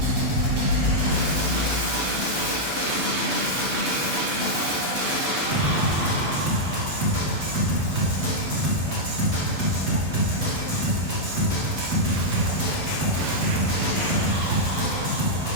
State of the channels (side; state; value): left; late; 8.0 ms